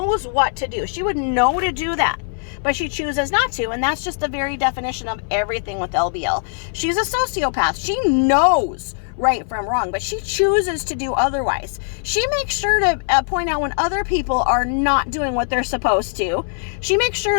what to do. She would know to do that, but she chooses not to. And that's just the very definition of everything with LBL. She's a sociopath. She knows right from wrong, but she chooses to do otherwise. She makes sure to point out when other people are not doing what they're supposed to. She makes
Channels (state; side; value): silent; right; 60 dB below the other